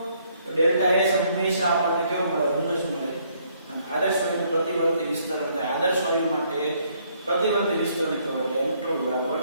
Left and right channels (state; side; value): inverted; both; correlation -0.68